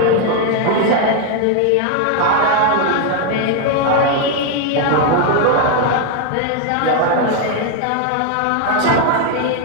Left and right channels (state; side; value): different; both; correlation 0.01